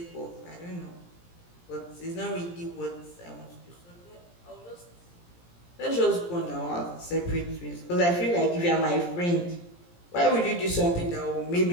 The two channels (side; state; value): right; late; 17 ms